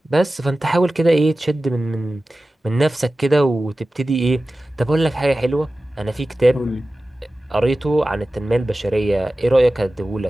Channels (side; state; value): both; normal; correlation 0.96